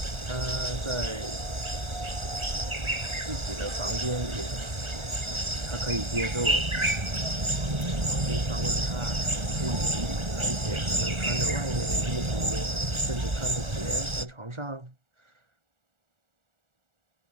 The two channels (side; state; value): left; late; 1.4 ms